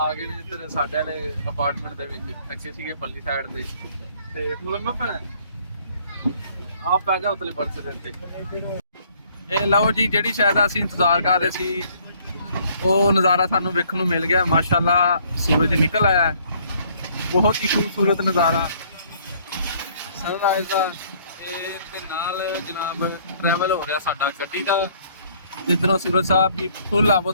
गए ने इधर साडे वाले अपार्टमेंट दे विच। अगे सीगे पल्ली साइड ते मुलम्मा पैना आप पै जा उतले बर्थ दे ते। ए लो जी, जिहड़ी शायद असीं इंतजार कर रहे सी वो नज़ारा सानू वेखण नूं मिल गया। माशाअल्लाह सूरज निकल आया है, बहुत ही खूबसूरत नज़ारा सनराइज का। नाल जनाब ट्रैवल हो रहा साडा गड्डी का, जिधरों सूरज साहब भी फुल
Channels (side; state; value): both; inverted; correlation -0.61